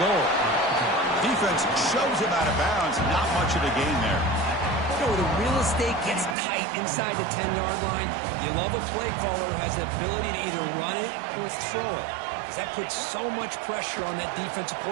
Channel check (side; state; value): left; drops out; at 6.4 s